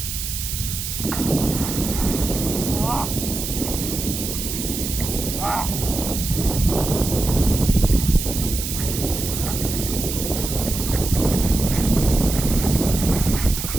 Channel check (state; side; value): noise; right; hiss, 5 dB below the sound